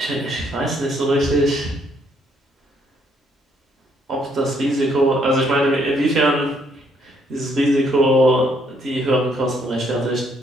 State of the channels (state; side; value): normal; both; correlation 0.69